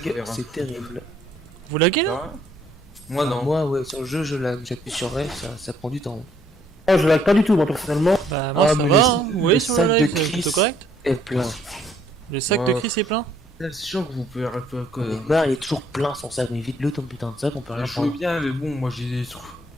faut faire un- c'est terrible. Vous laguez là? Ah, moi non. Moi, ouais, sur le jeu, je lag. J'appuie sur F, ça prend du temps. Oh, je lag pas du tout, moi personnellement. Bah moi Ah, ça mais va, le- hein. Vous voyez le sur sac le de live, c'est Chris. plutôt correct. Et plein. Le sac de Ouais. Chris est plein. C'est sûr que vous pouvez que. Neymar, il est toujours plein son sac, mais vite-le ton putain de sac, on peut rien Je veux prendre. bien, mais bon, moi j'ai des trucs.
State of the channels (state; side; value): normal; both; correlation 0.65